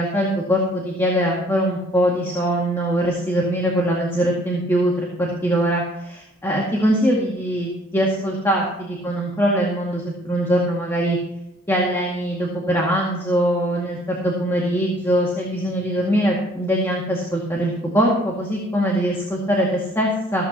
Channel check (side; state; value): both; normal; correlation 0.59